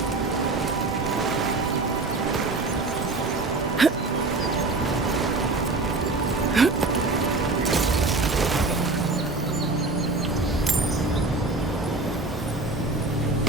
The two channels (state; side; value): quieter; left; 3.4 dB